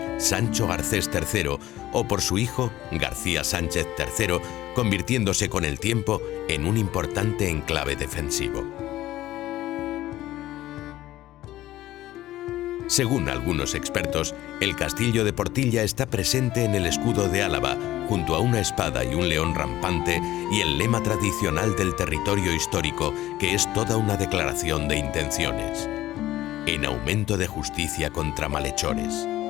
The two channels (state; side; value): quieter; right; 15.0 dB